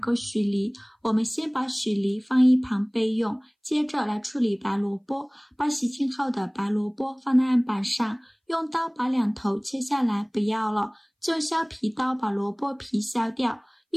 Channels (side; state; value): both; identical; correlation 1.00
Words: 许梨，我们先把许梨放一旁备用，接着来处理白萝卜。把洗净后的白萝卜放在案板上，用刀把2头切下来，不要了，就用削皮刀把萝卜皮削掉，